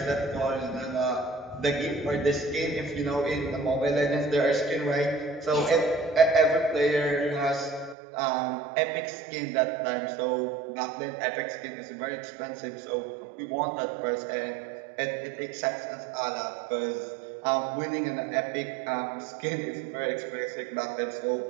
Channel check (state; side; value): drops out; left; at 8.0 s